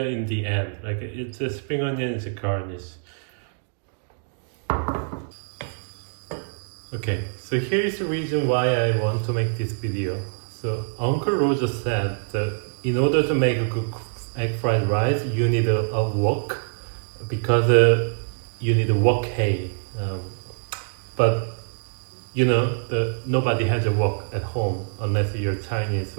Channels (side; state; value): left; silent; digital silence